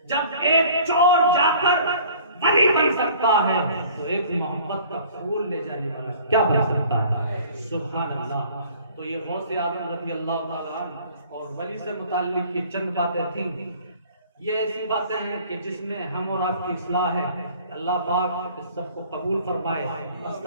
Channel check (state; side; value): inverted; both; correlation -0.51